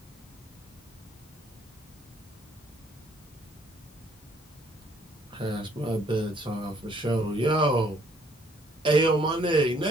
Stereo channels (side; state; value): both; normal; correlation 0.64